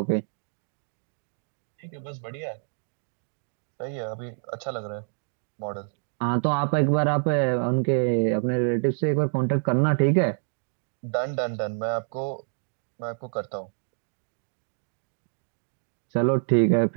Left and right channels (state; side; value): silent; left; 60 dB below the other